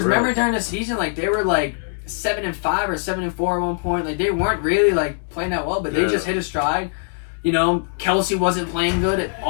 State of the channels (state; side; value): silent; right; digital silence